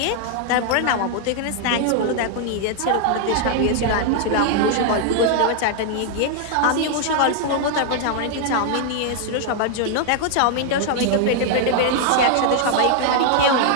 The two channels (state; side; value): different; both; correlation 0.00